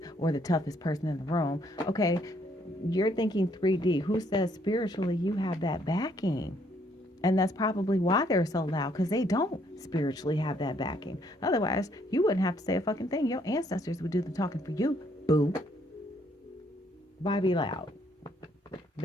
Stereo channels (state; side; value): normal; both; correlation 0.68